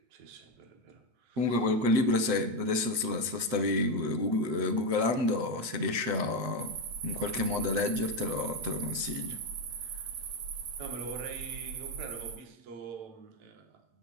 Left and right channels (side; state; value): left; late; 8.4 ms